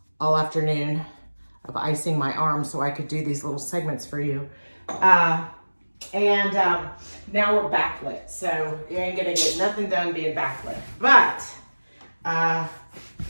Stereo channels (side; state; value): both; inverted; correlation -1.00